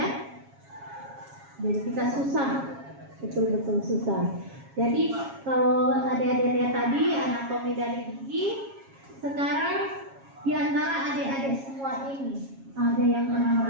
Jadi kita susah, betul-betul susah. Jadi kalau adik-adik lihat tadi anatomi dari gigi, sekarang di antara adik-adik semua ini ada yang pernah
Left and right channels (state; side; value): late; left; 7.3 ms